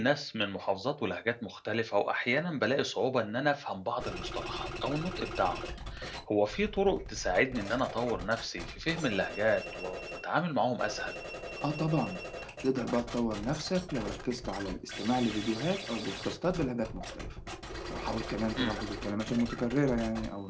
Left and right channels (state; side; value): identical; both; correlation 1.00